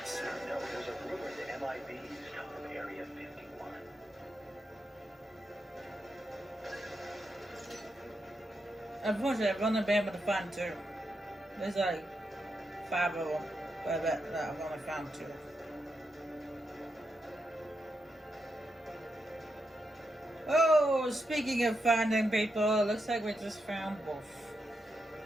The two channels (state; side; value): normal; both; correlation 0.84